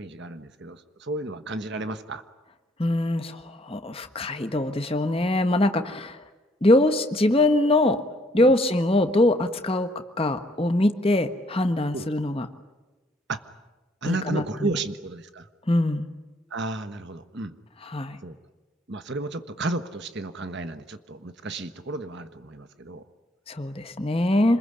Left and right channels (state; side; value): normal; both; correlation 0.66